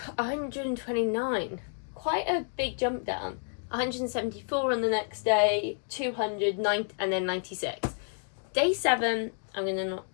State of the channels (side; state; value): right; silent; 58 dB below the other